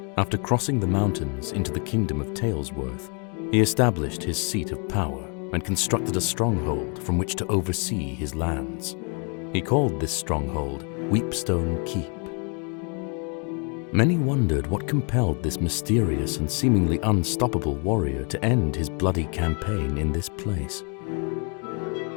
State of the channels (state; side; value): quieter; right; 37.1 dB